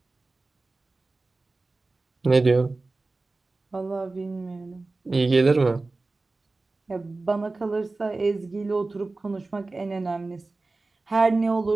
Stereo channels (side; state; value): left; quieter; 3.4 dB